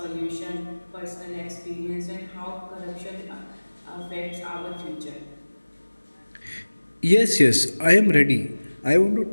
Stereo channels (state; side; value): inverted; both; correlation -1.00